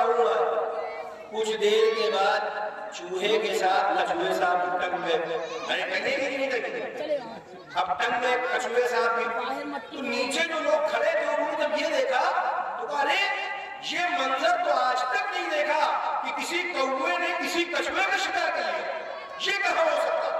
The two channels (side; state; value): both; identical; correlation 1.00